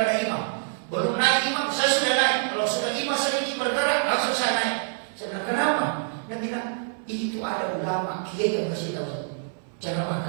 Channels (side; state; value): left; silent; 59 dB below the other